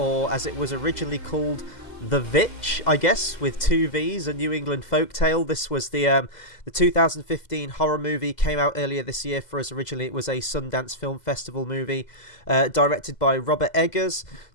as it was originally called, The Vitch, I guess, with two V's, a New England folktale. This was the 2015 horror movie, came out earlier this year for us. Originally it was a Sundance Film Festival movie, directed by Robert Eggers,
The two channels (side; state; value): right; late; 2.0 ms